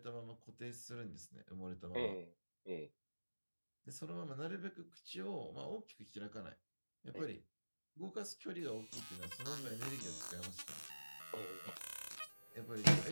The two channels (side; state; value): both; inverted; correlation -1.00